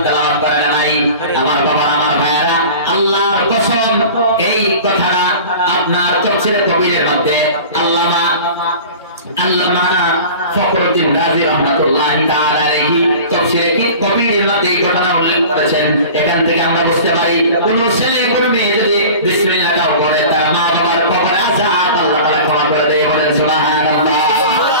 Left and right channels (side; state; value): both; inverted; correlation -0.39